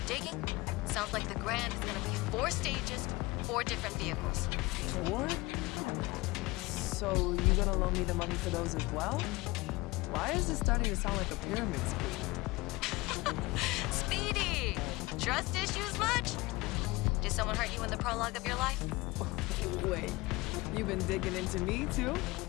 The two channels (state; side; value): quieter; right; 22.2 dB